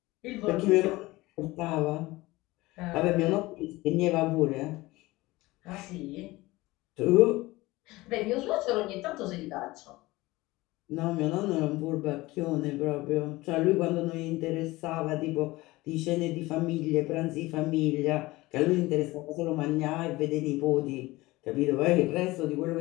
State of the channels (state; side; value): quieter; right; 20.0 dB